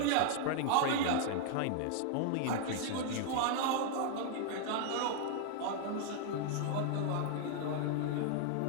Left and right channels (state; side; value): different; both; correlation -0.01